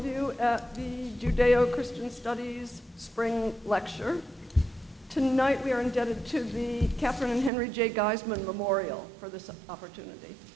you at the Judeo-Christian Studies Spring Lecture. Tonight we are indebted to the Catherine and Henry J. Gaisman Memorial for this opportunity.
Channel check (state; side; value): drops out; left; at 7.5 s